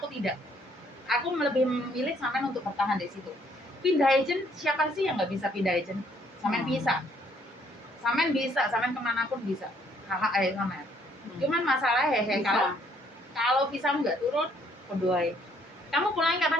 tidak. Aku lebih memilih sampean untuk bertahan di situ. Pindah agent, siapa sih yang nggak bisa pindah agent? Sampean bisa. Sampean bisa, sampean kemanapun bisa. Hak aja sampean. Cuman masalah hehe Bisa. kalau visa nggak turun, kedua. Kamu pulangnya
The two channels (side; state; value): both; normal; correlation 0.66